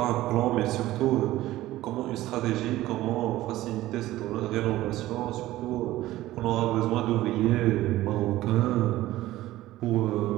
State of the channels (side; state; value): left; quieter; 15.9 dB